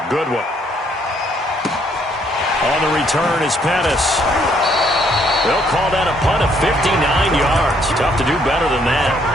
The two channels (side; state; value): both; normal; correlation 0.68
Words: good one. On the return is Pettis. They'll call that a punt of 59 yards. Tough to do better than that.